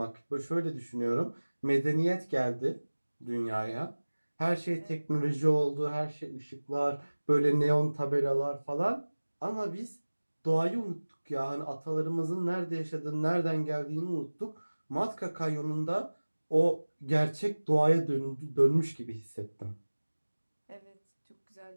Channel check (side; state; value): both; inverted; correlation -1.00